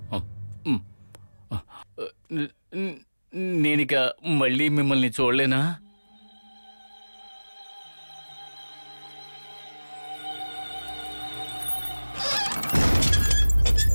నేనిక మళ్ళీ మిమ్మల్ని చూడలేనా?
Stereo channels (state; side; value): inverted; both; correlation -1.00